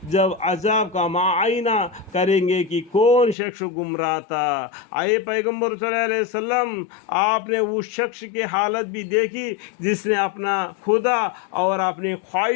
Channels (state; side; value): drops out; right; at 3.4 s